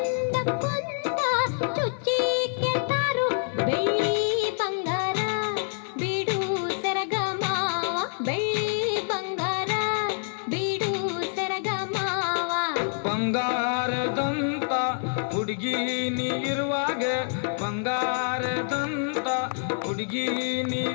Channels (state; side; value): silent; right; 60 dB below the other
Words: ಕುಂತ ಚುಚ್ಚಿ ಕೇಳ್ತಾರು ಬೆಳ್ಳಿ ಬಂಗಾರ ಬಿಡು ಸರಗಮಾವ ಬೆಳ್ಳಿ ಬಂಗಾರ ಬಿಡು ಸರಗಮಾವ ಬಂಗಾರದಂತ ಹುಡುಗಿ ನೀ ಇರುವಾಗ ಬಂಗಾರದಂತ ಹುಡುಗಿ ನೀ